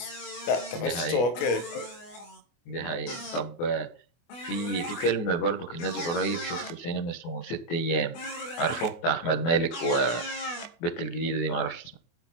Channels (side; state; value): right; late; 24 ms